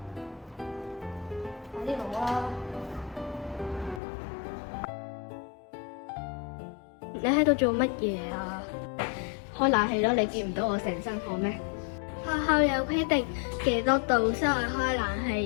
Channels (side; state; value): right; drops out; at 4.0 s